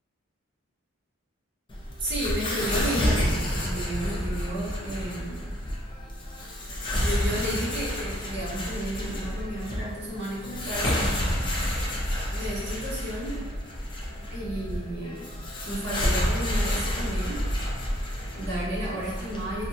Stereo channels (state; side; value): normal; both; correlation 0.66